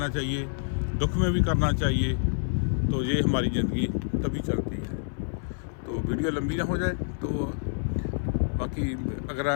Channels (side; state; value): right; silent; 58 dB below the other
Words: चाहिए, दुख में भी करना चाहिए। तो ये हमारी ज़िंदगी तभी चलती है। तो वीडियो लंबी ना हो जाए, तो बाकी अगर